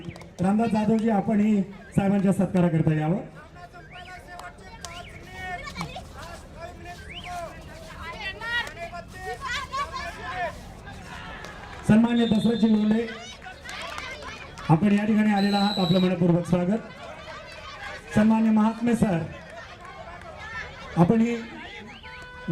रामनाथ जाधवजी आपणही साहेबांच्या सत्काराकरता यावं. सन्मान्य दसरथजी लोंढे आपण या ठिकाणी आलेला आहात. आपलं मनपूर्वक स्वागत. सन्मान्य महात्मे सर आपणही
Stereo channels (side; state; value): both; identical; correlation 1.00